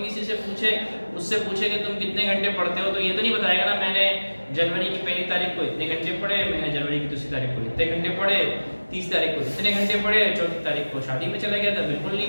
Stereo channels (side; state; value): both; inverted; correlation -1.00